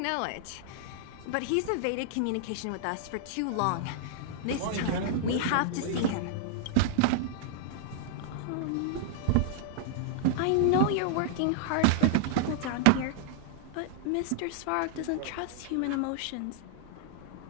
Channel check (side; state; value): both; different; correlation -0.01